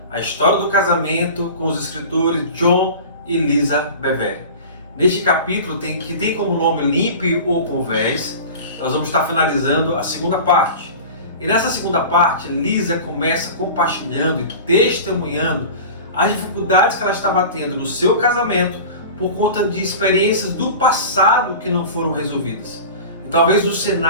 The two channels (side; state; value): both; inverted; correlation -0.35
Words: A História do Casamento com os escritores John e Lisa Bevere. Neste capítulo, que tem como nome Limpe ou Converse, nós vamos estar finalizando a segunda parte. E nessa segunda parte, Lisa começa compartilhando e testemunhando as dificuldades que ela estava tendo no seu casamento por conta de experiências do passado que não foram resolvidas. E talvez o